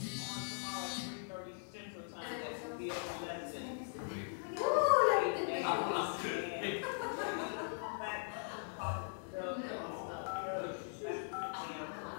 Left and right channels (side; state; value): right; silent; digital silence